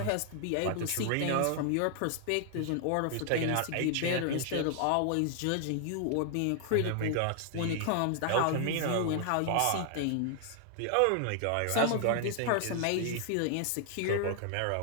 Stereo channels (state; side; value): different; both; correlation 0.00